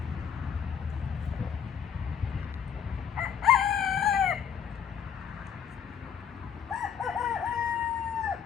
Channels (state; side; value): quieter; right; 8.1 dB